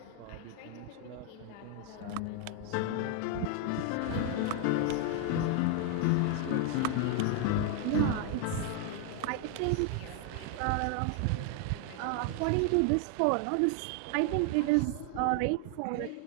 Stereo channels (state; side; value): different; both; correlation 0.00